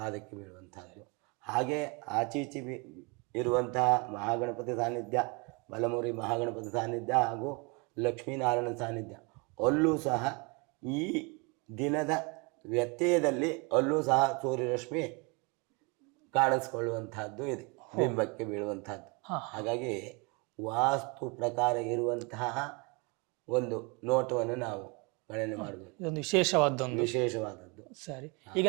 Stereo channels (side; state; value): left; quieter; 30.3 dB